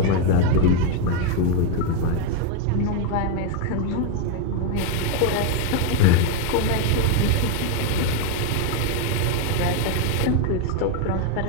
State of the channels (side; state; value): both; different; correlation 0.01